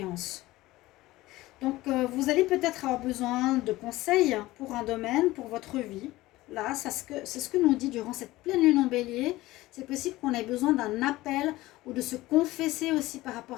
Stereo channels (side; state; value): right; quieter; 18.0 dB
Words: Donc vous allez peut-être avoir besoin de conseils pour un domaine, pour votre vie. Là, c'est ce que nous dit durant cette pleine lune en bélier. C'est possible qu'on ait besoin d'un appel ou de se confesser aussi par rapport